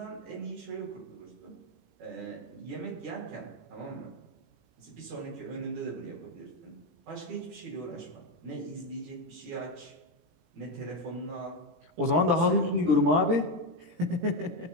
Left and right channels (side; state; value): left; late; 18 ms